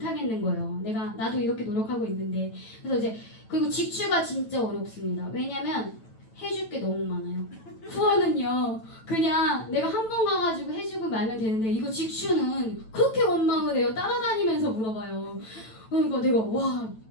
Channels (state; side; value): late; right; 9.1 ms